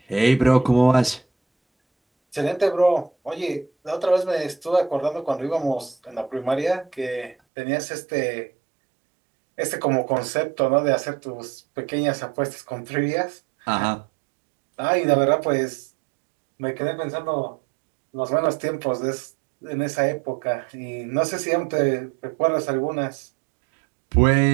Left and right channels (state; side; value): drops out; left; at 7.4 s